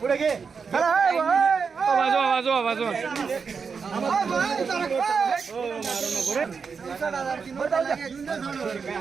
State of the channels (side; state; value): left; quieter; 5.6 dB